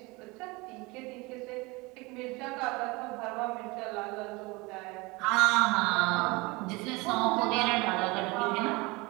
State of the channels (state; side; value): quieter; left; 24.2 dB